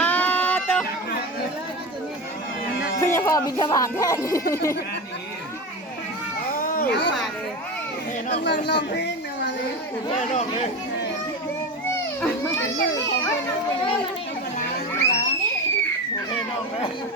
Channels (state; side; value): normal; both; correlation 0.24